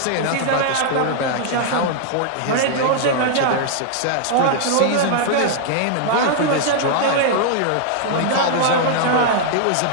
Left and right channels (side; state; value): both; different; correlation -0.01